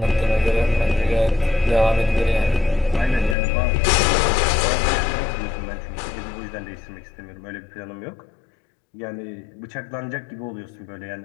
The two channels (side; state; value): right; drops out; at 3.4 s